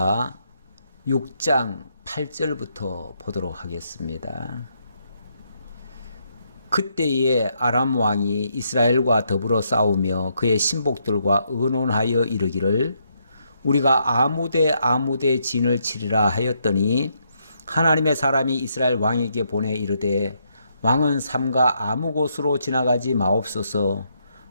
6장 8절부터 보도록 하겠습니다. 그때에 아람 왕이 이스라엘과 더불어 싸우며 그의 신복들과 의논하여 이르기를 우리가 아무데 진을 치리라 하였더니 하나님의 사람이 이스라엘 왕에게 보내 이르되 왕은 삼가 아무 곳으로 지나가지 마옵소서.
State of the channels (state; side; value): inverted; both; correlation -0.76